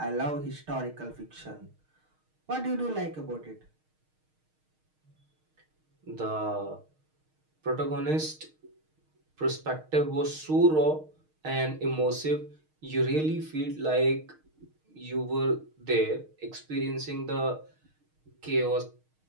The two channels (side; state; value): left; late; 6.5 ms